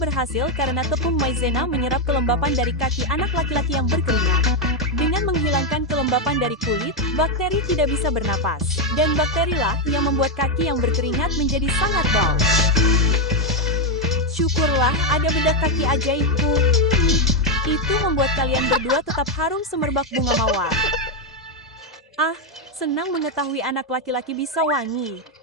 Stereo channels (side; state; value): both; normal; correlation 0.04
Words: karena tepung maizena menyerap kelembapan dari kaki anak laki-laki yang berkeringat. Dengan menghilangkan kelembapan dari kulit, bakteri tidak bisa bernapas. Dan bakterilah yang membuat kaki yang berkeringat menjadi sangat bau. Syukurlah ada bedak kaki ajaibku. Itu membuat kalian berdua tetap harum semerbak bunga mawar. Ah, senang mengetahui anak laki-laki bisa wangi.